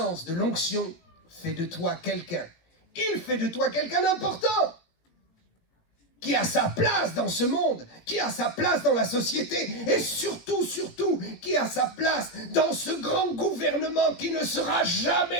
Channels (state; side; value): late; right; 18 ms